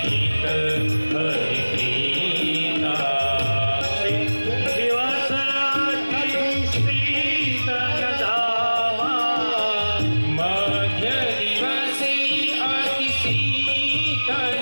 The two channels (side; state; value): both; inverted; correlation -1.00